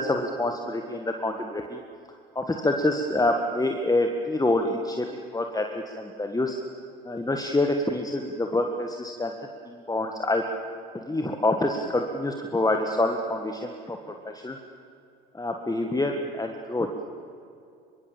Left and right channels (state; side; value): normal; both; correlation 0.65